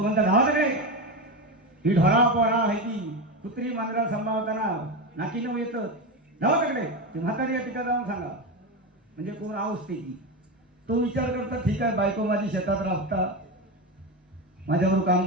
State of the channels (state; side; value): normal; both; correlation 0.17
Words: म्हणता धावाकडे ही ढोळा पोळा आहे ती कुत्री मांजरा सांभाळताना नाकीनं येतं धावाकडे ते म्हातारी या ठिकाणी जाऊन सांगा. म्हणजे कोण आवसते की तो विचार करता ठीक आहे बायको माझी शेतात राबता माझ्याबरोबर